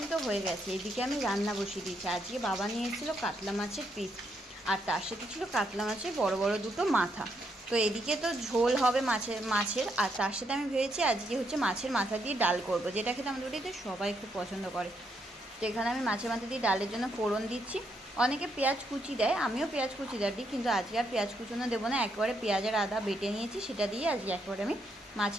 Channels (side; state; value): both; normal; correlation 0.77